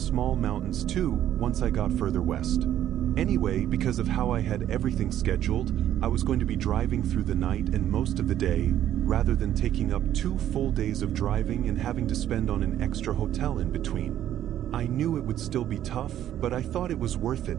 mountains too once I got further west. Anyway, because of how I had everything scheduled, I was going to be driving through the night and most of the day, rather than taking up 2 full days of driving and having to spend on an extra hotel in between. I knew it would still be tough, but I thought it was worth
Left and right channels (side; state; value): left; quieter; 11.5 dB